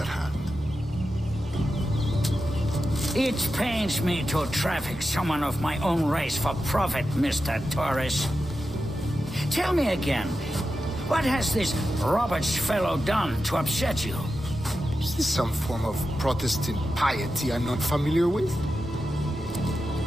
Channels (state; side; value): normal; both; correlation 0.90